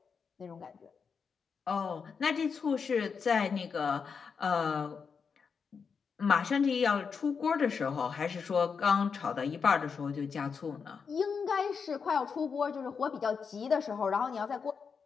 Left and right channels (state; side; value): quieter; right; 5.9 dB